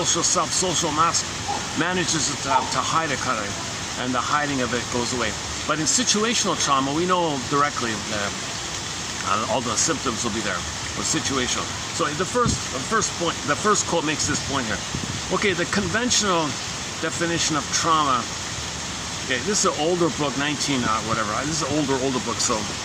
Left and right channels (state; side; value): identical; both; correlation 1.00